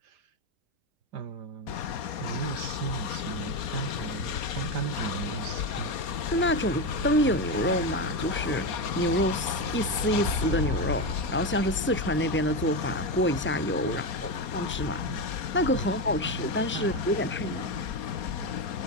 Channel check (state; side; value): normal; both; correlation 0.14